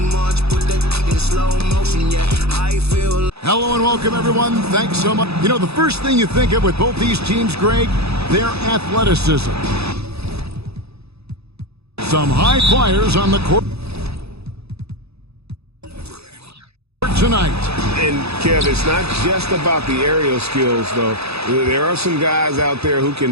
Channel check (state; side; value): late; left; 0.79 ms